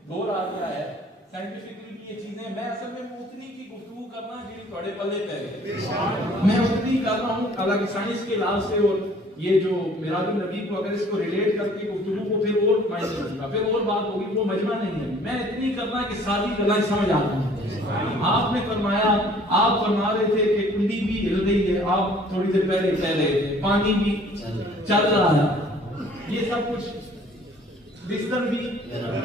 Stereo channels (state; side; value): normal; both; correlation 0.54